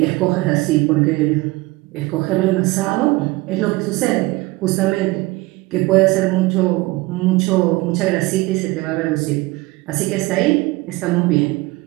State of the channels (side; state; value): left; quieter; 21.4 dB